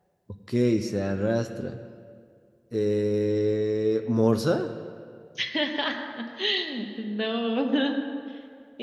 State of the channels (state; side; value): identical; both; correlation 1.00